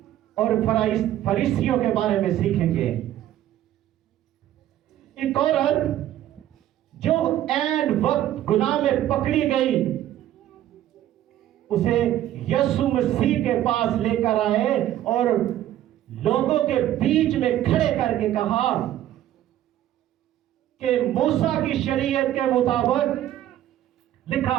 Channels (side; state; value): left; quieter; 12.7 dB